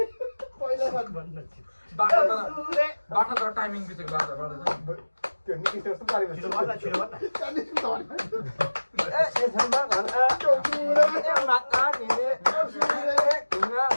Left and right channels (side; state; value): both; inverted; correlation -1.00